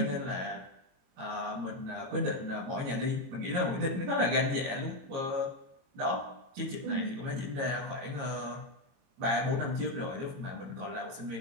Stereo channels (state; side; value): late; left; 22 ms